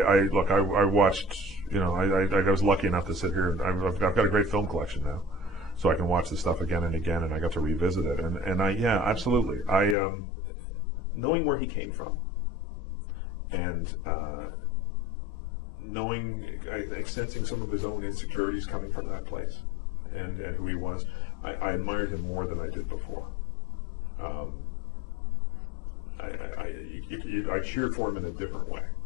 watched, I was lucky enough to sit here, and I've got a great film collection now, so I can watch the stuff again and again, and I got to revisit it. And yeah, absolutely. Knowing where he came from, and sensing some of his own insecurities coming from that place, and who he was, I admired him more than I did before. I cheer for him in a different way.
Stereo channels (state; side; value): drops out; right; at 10.0 s